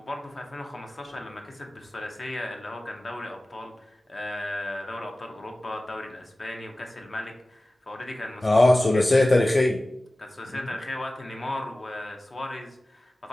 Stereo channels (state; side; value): normal; both; correlation 0.97